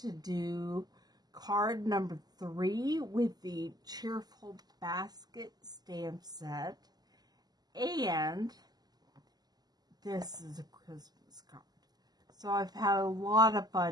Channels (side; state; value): left; late; 0.20 ms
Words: do card number 3 with the Cheerful Basket stamp set, and this is a Christmas card. So I've had a lot of